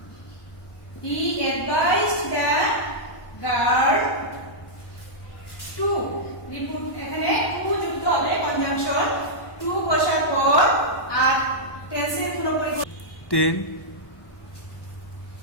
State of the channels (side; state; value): right; late; 1.2 ms